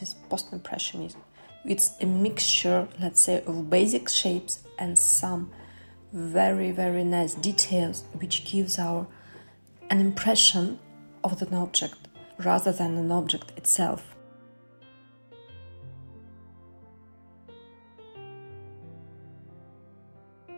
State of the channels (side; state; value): both; inverted; correlation -1.00